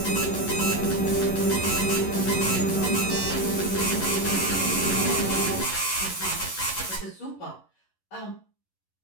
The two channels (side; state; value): right; late; 11 ms